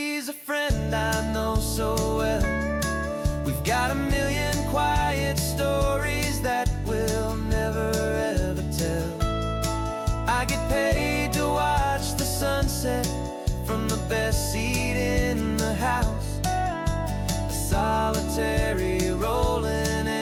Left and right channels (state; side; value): identical; both; correlation 1.00